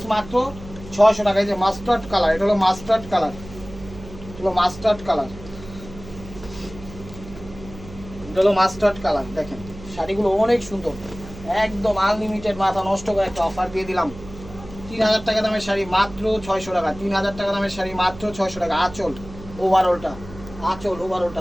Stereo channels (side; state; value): right; noise; hum, 16 dB below the sound